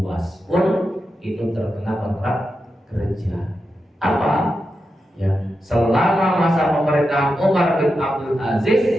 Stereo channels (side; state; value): both; normal; correlation 0.88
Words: pun itu terkena kontrak kerja. Apa? Ya, selama masa pemerintahan Umar bin Abdul Aziz